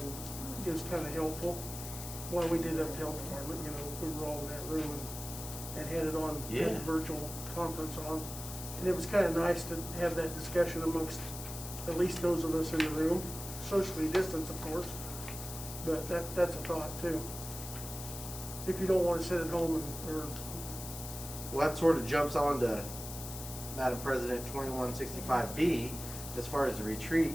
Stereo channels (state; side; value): noise; left; hiss, 9 dB below the sound